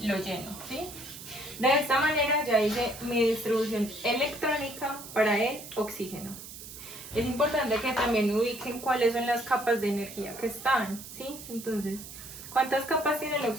lo lleno, ¿sí? De esta manera ya hice mi distribución electrónica para el oxígeno. Es importante que también ubiquen cuáles son las capas de energía que están, ¿sí? Entonces, ¿cuántas capas tiene el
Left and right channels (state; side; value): noise; right; hiss, 13 dB below the sound